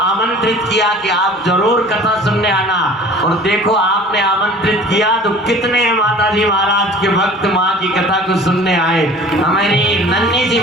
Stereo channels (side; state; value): both; normal; correlation 0.45